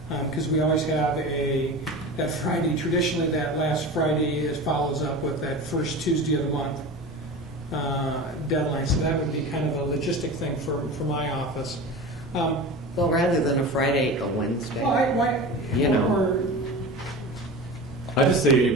because we always have that Friday, traditionally that last Friday follows up with that first Tuesday of the month deadline, so that would be kind of a logistic thing for my office. Well, rather than a Friday, a Wednesday. Or I just say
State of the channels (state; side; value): normal; both; correlation 0.31